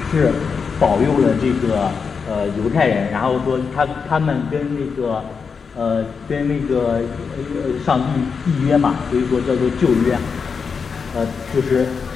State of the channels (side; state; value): right; quieter; 5.7 dB